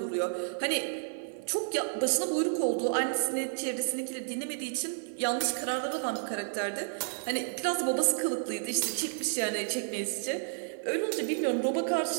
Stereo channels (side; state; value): left; silent; 57 dB below the other